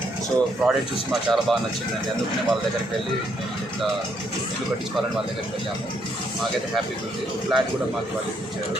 సో ప్రోడక్ట్ చూసి మాకు చాలా బాగా నచ్చిందండి. అందుకనే వాళ్ళ దగ్గరికి వెళ్ళి ఇట్లా ఇల్లు కట్టించుకోవాలని వాళ్ళ దగ్గరికి వెళ్ళాము. మాకైతే హ్యాపీగా ఉంది. ఫ్లాట్ కూడా మాకు వాళ్ళు ఇచ్చారు.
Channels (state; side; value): normal; both; correlation 0.73